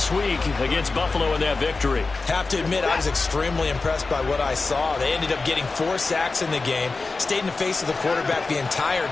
week against Buffalo in that victory. Have to admit, I was extremely impressed by what I saw. They ended up getting 4 sacks in the game, stayed in the face of the quarterback the entire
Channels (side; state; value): right; quieter; 3.9 dB